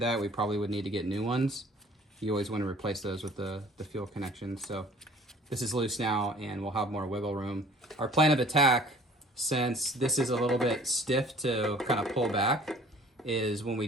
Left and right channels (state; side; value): normal; both; correlation 0.51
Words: that, we probably would need to get new ones. You always want to replace those with the fuel connections. So this is loose now, and we'll have more wiggle room. Our plan of attack, since this is a little bit stiff to kind of pull back, is when we